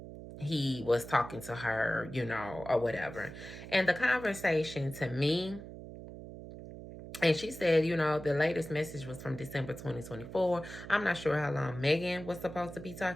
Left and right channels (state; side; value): noise; right; hum, 12 dB below the sound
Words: he was talking to her, or whatever. And the conversation to me, and she said, the latest message was from December 2024. I'm not sure how long Megan was supposed to be